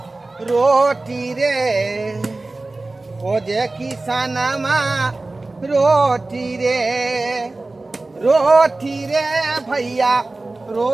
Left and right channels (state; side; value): quieter; left; 3.2 dB